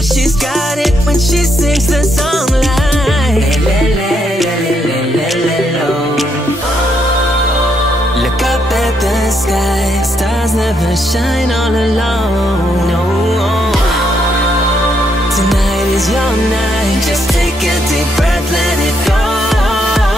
she's got it when she sings the song like look up at the sky, stars never shine all alone. No, tonight is your night. Just take a deep breath, let it go.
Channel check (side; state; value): both; normal; correlation 0.76